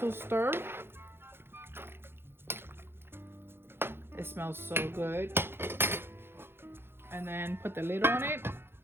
stir. It smells so good. And then put the lid on it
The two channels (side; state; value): left; late; 0.11 ms